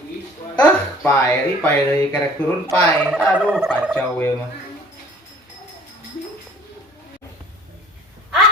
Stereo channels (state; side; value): normal; both; correlation 0.52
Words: Pae deui kerek turun pae. Aduh, kacau we mah.